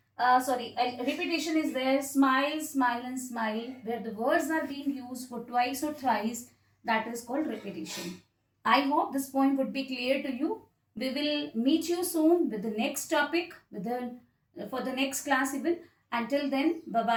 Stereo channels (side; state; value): both; identical; correlation 1.00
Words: Repetition is there. Smile, smile and smile. Where the words are being used for twice or thrice. That is called repetition. I hope this point would be clear to you. We will meet you soon with the next topic, for the next class even. Until then,